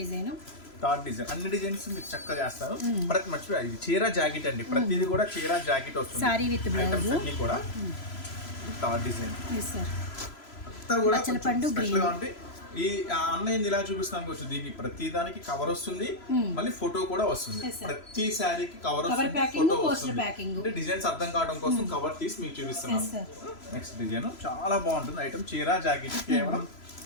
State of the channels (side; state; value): right; late; 3.0 ms